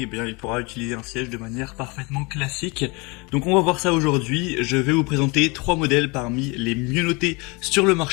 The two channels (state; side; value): quieter; right; 27.8 dB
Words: bien, il pourra utiliser un siège de manière parfaitement classique. Donc on va voir ça aujourd'hui. Je vais vous présenter 3 modèles parmi les mieux notés sur le